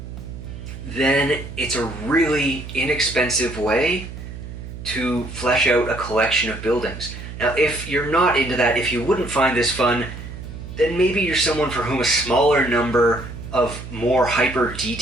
then it's a really inexpensive way to flesh out a collection of buildings. Now, if you're not into that, if you wouldn't find this fun, then maybe you're someone for whom a smaller number of more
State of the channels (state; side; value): noise; right; hum, 11 dB below the sound